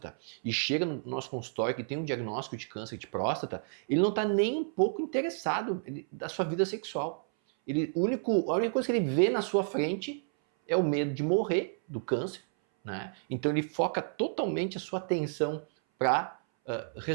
e chega no nosso consultório que tem um diagnóstico de câncer de próstata, ele não está nem um pouco interessado da sua vida sexual. A única coisa que ele vê na sua frente é o medo de morrer do câncer, né? Então ele foca totalmente a sua atenção para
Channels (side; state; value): left; silent; 57 dB below the other